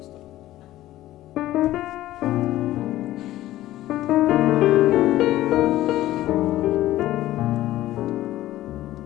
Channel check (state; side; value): quieter; right; 15.0 dB